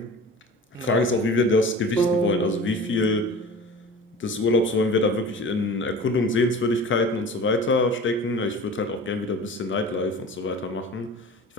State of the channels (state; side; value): normal; both; correlation 0.38